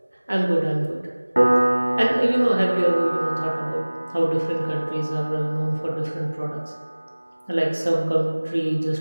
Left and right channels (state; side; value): inverted; both; correlation -1.00